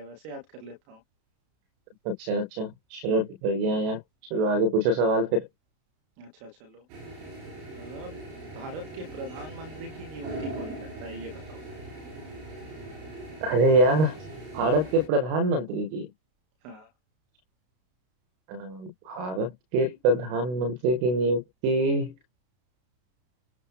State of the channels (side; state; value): left; late; 32 ms